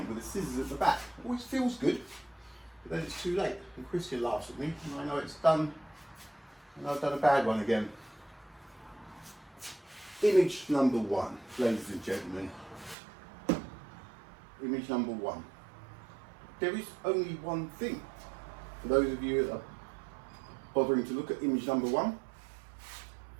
with the scissors at the back. Always feels good, but then it's too late. And Christian laughs at me, and I know it's done. And I've done a bad one again. Image number one, ladies and gentlemen. Image number one. There is only one thing. For those of you that are bothering to look at image number one,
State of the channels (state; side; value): drops out; left; at 13.0 s